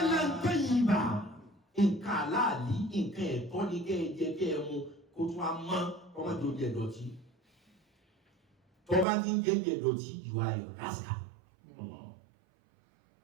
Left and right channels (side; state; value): left; drops out; at 9.1 s